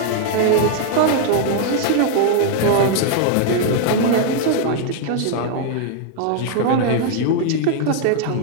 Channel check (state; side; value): different; both; correlation 0.00